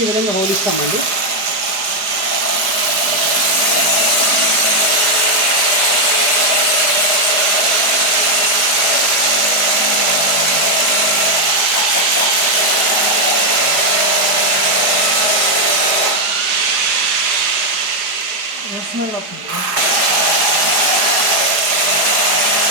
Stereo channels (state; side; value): late; left; 4.9 ms